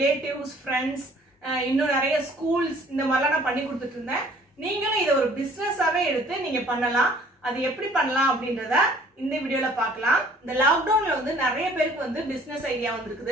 ஃப்ரெண்ட்ஸ், இன்னும் நிறைய ஸ்கூல்ஸ் இந்த மாதிரிலாம் நான் பண்ணி கொடுத்துட்டு இருந்தேன். நீங்களும் இதை ஒரு பிசினஸாவே எடுத்து நீங்க பண்ணலாம். அது எப்படி பண்ணலாம் அப்படின்றத இந்த வீடியோல பார்க்கலாம். இந்த லாக்டவுன்ல வந்து நிறைய பேருக்கு வந்து பிசினஸ் ஐடியா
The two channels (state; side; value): normal; both; correlation 0.55